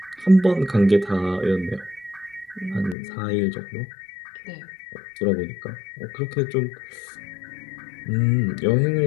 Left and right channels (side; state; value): right; drops out; at 3.0 s